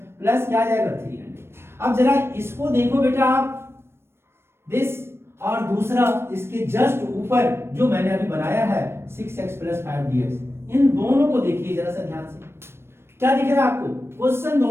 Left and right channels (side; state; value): left; late; 0.12 ms